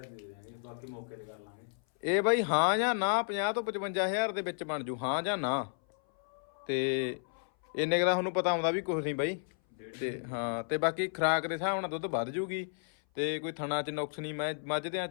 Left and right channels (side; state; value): right; silent; 56 dB below the other